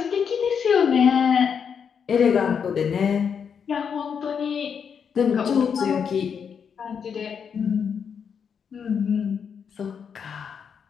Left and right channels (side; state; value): right; quieter; 7.0 dB